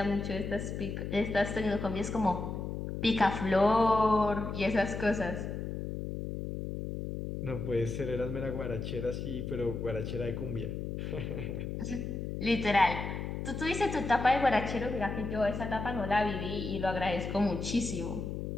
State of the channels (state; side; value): noise; left; hum, 5 dB below the sound